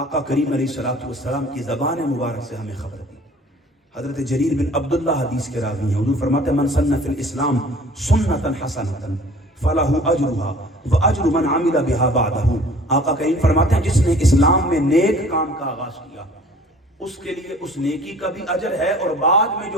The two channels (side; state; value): both; normal; correlation 0.50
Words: کریم علیہ الصلوۃ والسلام کی زبان مبارک سے ہمیں خبر دی. حضرت جریر بن عبداللہ حدیث کے راوی ہیں. حضور فرماتے ہیں من سن فی الاسلام سنتا حسنتا فلہ اجرھا واجر من عمل بها بعدہ. آقا کریم فرماتے ہیں جس نے اسلام میں نیک کام کا آغاز کیا اس کے لیے اس نیکی کا بھی اجر ہے اور بعد میں